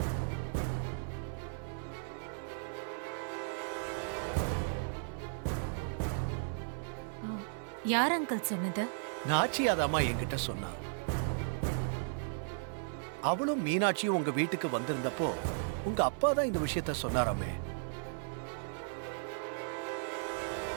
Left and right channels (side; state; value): left; silent; 54 dB below the other